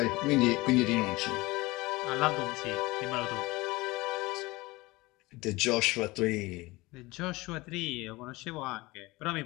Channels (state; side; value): quieter; right; 21.6 dB